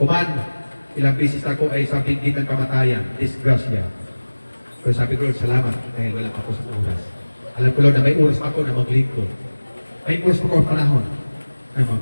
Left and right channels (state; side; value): inverted; both; correlation -1.00